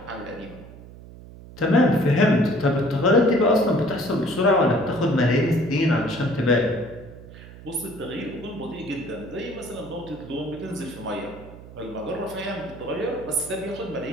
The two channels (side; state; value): right; noise; hum, 17 dB below the sound